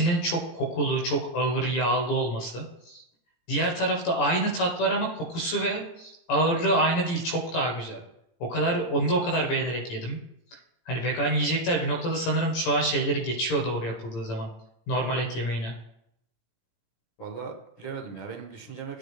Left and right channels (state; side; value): late; right; 18 ms